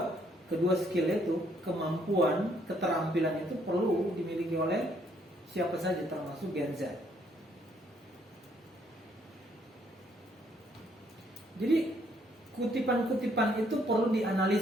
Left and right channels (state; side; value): normal; both; correlation 0.68